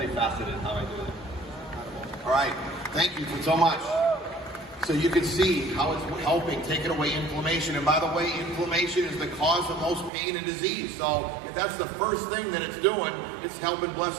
how I do it. All right, thank you so much. So you can see how it's helping taking away inflammation. And by the way, inflammation is the cause of most pain and disease. So if that's the first thing that it's doing, it's helping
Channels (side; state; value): left; drops out; at 10.1 s